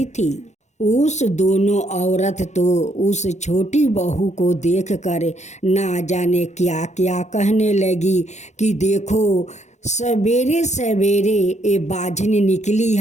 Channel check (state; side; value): late; right; 0.33 ms